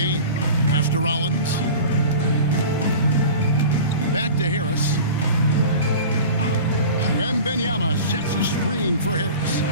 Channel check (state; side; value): inverted; both; correlation -0.36